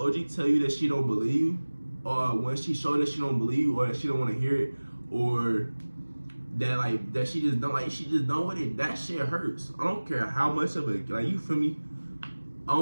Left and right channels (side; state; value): both; inverted; correlation -1.00